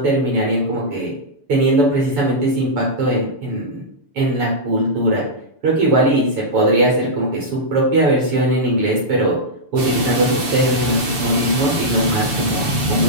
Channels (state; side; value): late; left; 6.9 ms